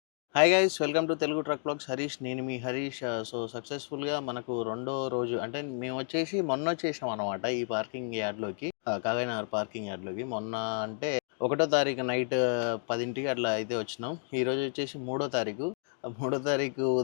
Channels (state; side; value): silent; right; 57 dB below the other